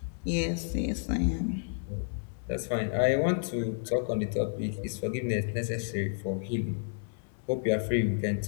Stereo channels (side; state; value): right; silent; digital silence